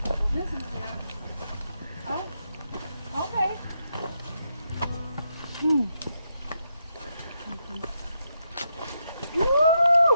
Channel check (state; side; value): inverted; both; correlation -0.82